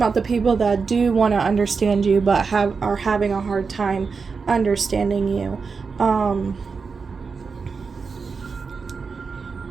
the people that do want to understand you, but are having a hard time understanding you.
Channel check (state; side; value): quieter; left; 5.1 dB